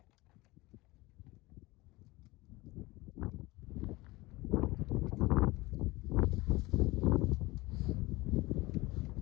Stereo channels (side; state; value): right; quieter; 21.2 dB